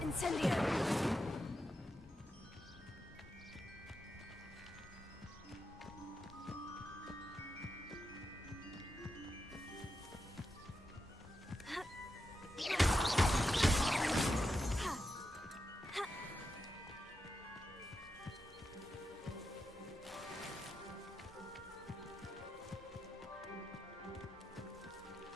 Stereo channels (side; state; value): both; normal; correlation 0.88